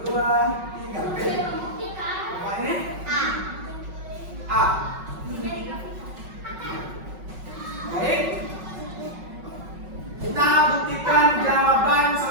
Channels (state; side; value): late; left; 5.4 ms